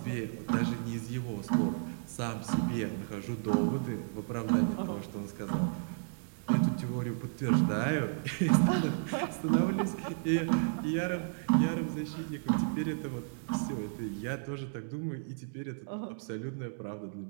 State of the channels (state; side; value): silent; left; digital silence